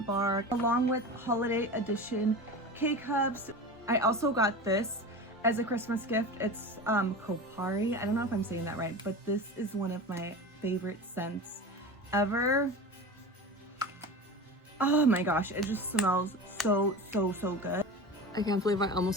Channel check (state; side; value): normal; both; correlation 0.30